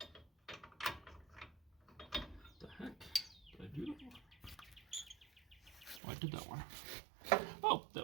the heck? Did I do that one? Oh, I did that one. Oh, that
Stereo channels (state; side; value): drops out; left; at 6.0 s